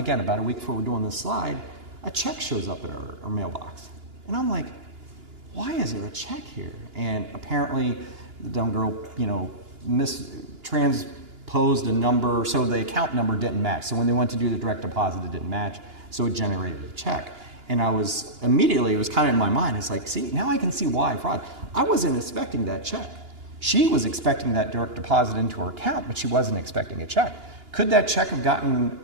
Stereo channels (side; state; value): left; late; 2.9 ms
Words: week before we're doing this slide, a check shows up at our mailbox. And I'm like, why is there a check here? And apparently the dumb girl, transposed a number, so the account number didn't match. So when they went to do the direct deposit, it didn't match, so it generated a check. And it was kind of in my mind, it's like, see, now I can see why fraud. I wasn't expecting that check. She was expecting that direct deposit into her account, but she wasn't expecting a check. Could that check have gotten